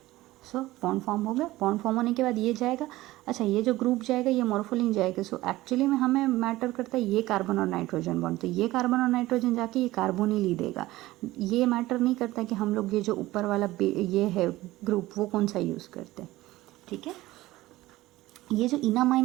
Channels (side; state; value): left; quieter; 17.5 dB